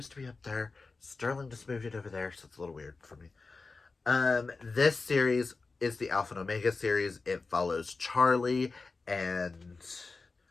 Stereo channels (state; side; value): quieter; right; 4.0 dB